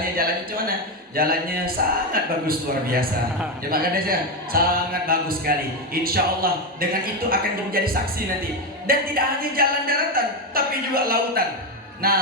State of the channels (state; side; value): normal; both; correlation 0.10